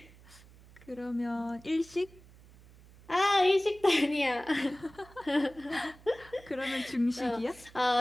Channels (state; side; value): noise; right; hum, 23 dB below the sound